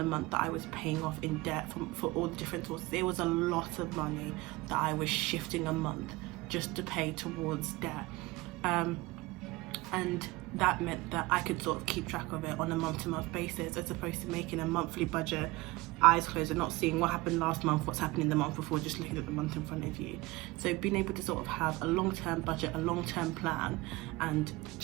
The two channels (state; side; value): quieter; left; 21.2 dB